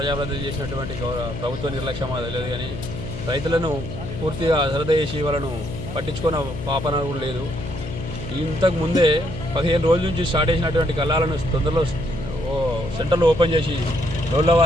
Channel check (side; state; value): left; noise; hum, 8 dB below the sound